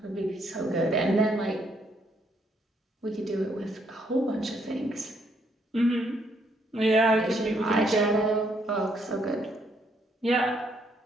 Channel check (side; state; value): both; normal; correlation 0.71